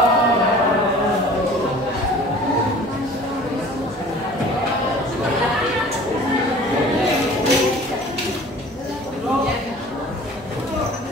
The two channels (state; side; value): normal; both; correlation 0.46